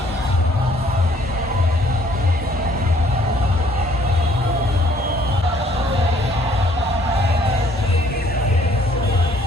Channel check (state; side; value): normal; both; correlation 0.62